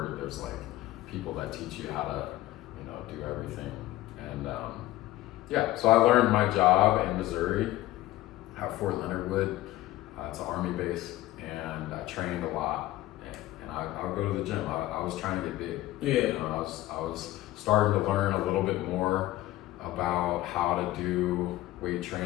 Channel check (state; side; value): quieter; right; 16.0 dB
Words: there's like people that teach you how to, you know, do everything. And so I learned my job in Missouri at Fort Leonard Wood. It's an Army base, and I trained a lot. I would go to the gym. I was trying to get big. Yeah. You know, I was starting to learn a little bit more about how to do weight